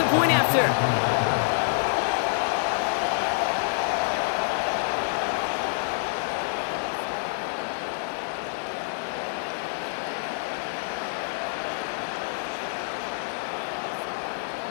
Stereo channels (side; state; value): right; silent; 57 dB below the other